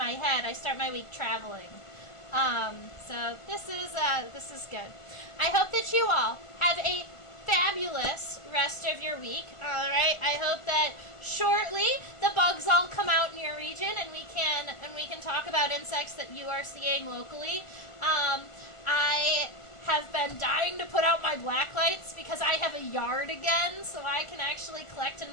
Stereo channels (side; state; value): right; late; 1.4 ms